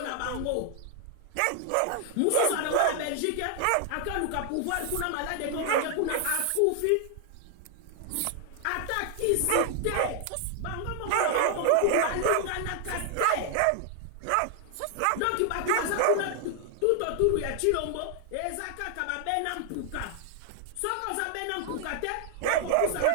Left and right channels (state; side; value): different; both; correlation 0.00